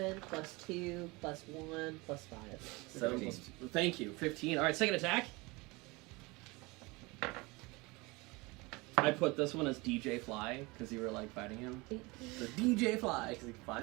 plus 2 plus 1 plus 5. 7 plus, thank you. 15. All right, second attack. I put this one as DJ Fly because you were like fighting him. 18. So DJ Fly because he can fly.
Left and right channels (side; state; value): left; quieter; 24.6 dB